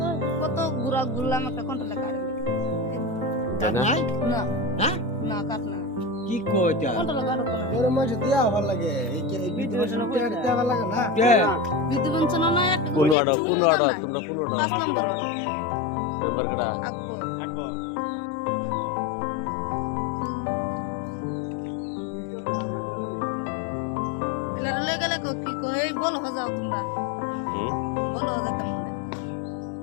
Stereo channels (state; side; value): drops out; right; at 13.2 s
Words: কত গুড়া গুড়লাম একটা কোনটা লেখা নাই না হ্যাঁ না কাট না কি কইতা কোনটা লেখা না এর মাঝে দেয়া ভালো লাগে এই যে বিদ্যুৎ দেয়া ভালো লাগে না কে বিদ্যুৎ বঞ্চন না একটা কোন অর্ডার তোমরা কোন অর্ডার 5 নম্বর মেম্বার কটা আকবর এলার লই গেলে কি কই বলো যাও তোমরা বলো যাও কেমন